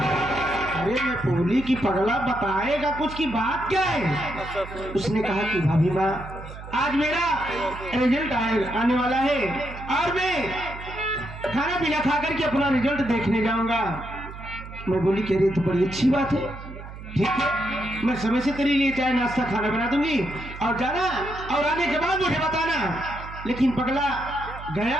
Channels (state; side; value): noise; right; hum, 13 dB below the sound